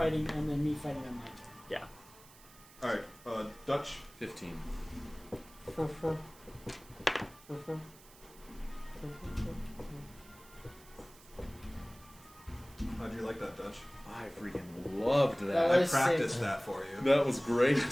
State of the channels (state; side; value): noise; right; hiss, 23 dB below the sound